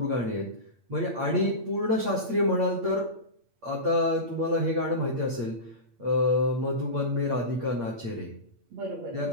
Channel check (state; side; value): late; left; 8.6 ms